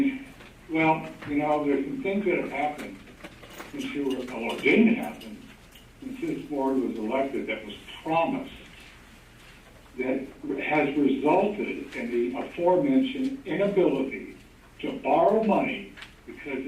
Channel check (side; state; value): both; identical; correlation 1.00